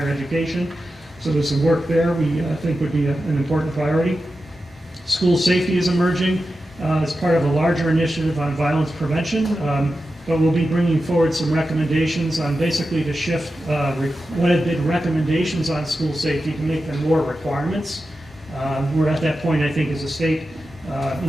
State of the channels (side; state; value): both; normal; correlation 0.91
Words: education. So there's some work there we think would be an important priority. School safety is emerging as part of a larger initiative on violence prevention, but we'll be bringing forward some recommendations on basically to shift what have been recommendations on school safety to make them more requirements. We're at that point, I think, as a state.